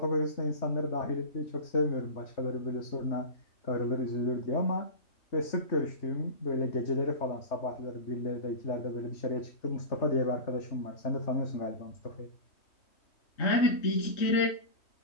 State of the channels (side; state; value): right; late; 3.2 ms